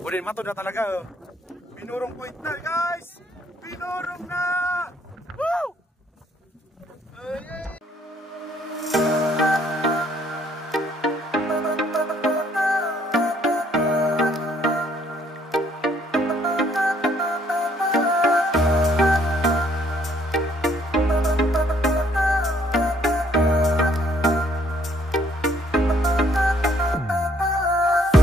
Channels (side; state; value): both; normal; correlation 0.65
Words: Udah matod na talaga. Binurong point na guys. Binurong na. Woo!